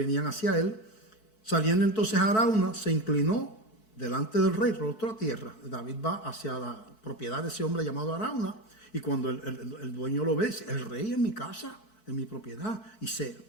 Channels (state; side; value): late; right; 4.6 ms